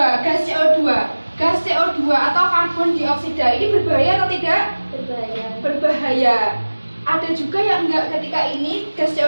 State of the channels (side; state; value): both; inverted; correlation -1.00